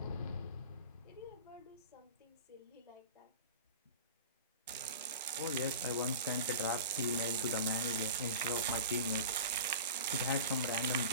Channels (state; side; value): inverted; both; correlation -0.34